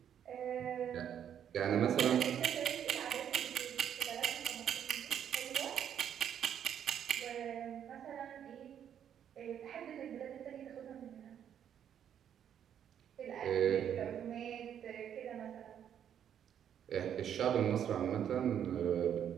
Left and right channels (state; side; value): quieter; left; 9.3 dB